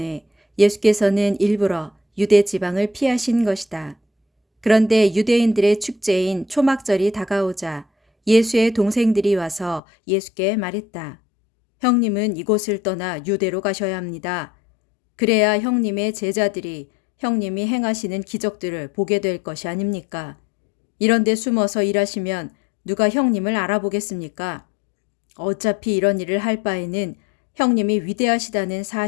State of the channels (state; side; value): drops out; right; at 9.8 s